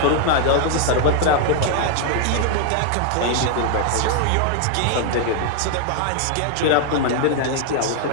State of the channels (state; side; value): different; both; correlation 0.00